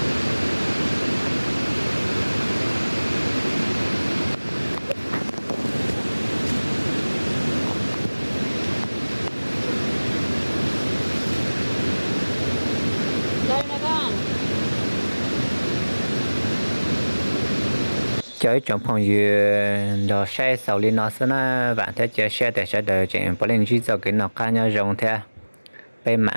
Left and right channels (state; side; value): inverted; both; correlation -1.00